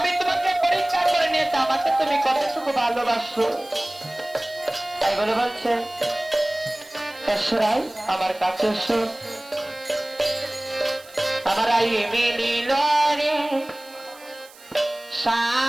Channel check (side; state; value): right; noise; hiss, 23 dB below the sound